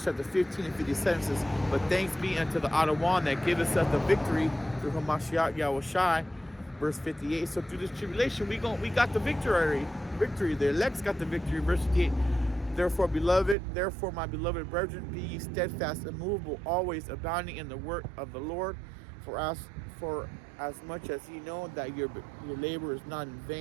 chapter 15 and 57 says, but thanks be unto the Adawan that giveth us the victory through Hamashiach Yahushai. Verse 58. So through this tribulation, we got the victory. The elect's got the victory. Verse 58. Therefore, my beloved brethren, be ye steadfast, immovable, always abounding in the work of the Lord. For as much as ye know that your labor is not in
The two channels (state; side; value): drops out; left; at 13.6 s